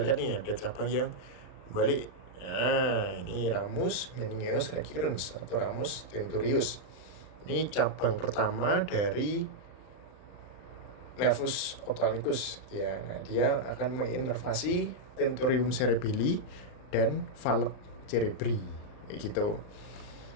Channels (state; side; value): late; right; 39 ms